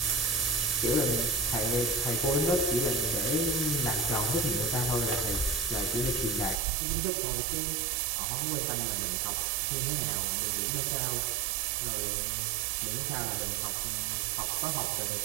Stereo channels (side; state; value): left; drops out; at 6.6 s